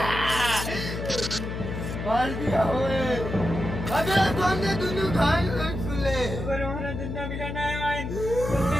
होए अबे तोने दोनों घायल कर सुले पर हमारा जिंदा मिला नहीं आए तुमने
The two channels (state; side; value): noise; left; hum, 5 dB below the sound